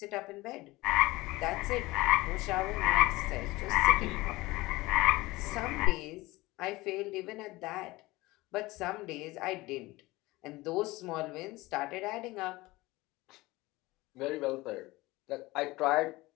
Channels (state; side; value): quieter; right; 20.4 dB